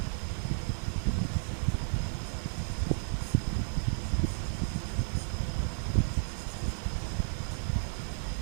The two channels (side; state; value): left; silent; digital silence